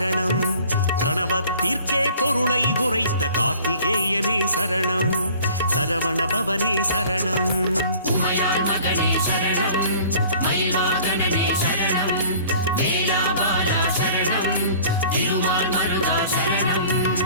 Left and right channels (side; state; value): both; inverted; correlation -0.48